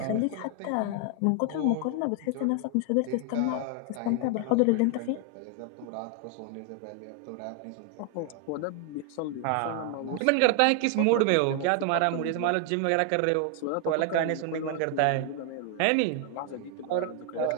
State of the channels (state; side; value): different; both; correlation 0.00